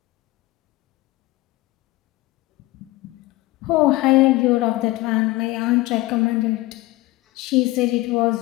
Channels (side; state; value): right; quieter; 19.4 dB